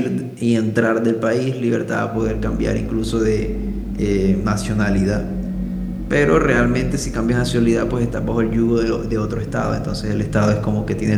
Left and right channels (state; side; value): identical; both; correlation 1.00